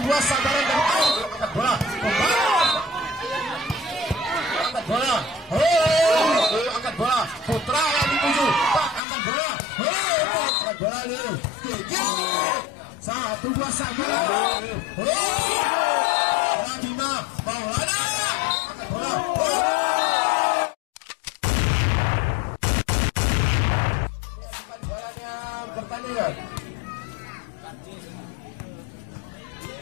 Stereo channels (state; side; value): drops out; right; at 9.0 s